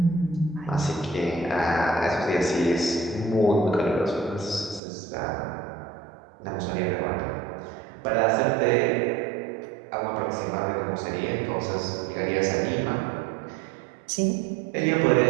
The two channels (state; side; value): drops out; left; at 4.8 s